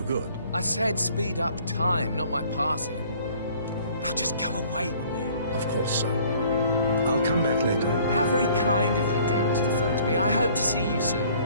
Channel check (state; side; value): inverted; both; correlation -0.55